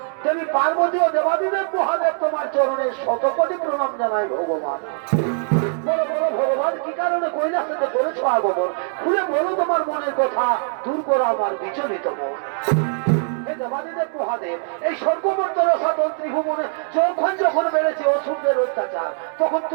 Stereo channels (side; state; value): left; silent; 56 dB below the other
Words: দেবী পার্বতী ও দেবাদিদেব মহাদেব তোমার চরণে শতকোটি প্রণাম জানাই ভগবান। বলো বলো ভগবান, কি কারণে কৈলাসেতে করেছ আগমন? খুলে বলো তোমার মনের কথা, দূর করো আমার বিচলিত মন। হে দেবাদিদেব মহাদেব, এই স্বর্গমর্ত রসাতল ত্রিভুবনে যখন বেড়েছে অসুরদের অত্যাচার, তখন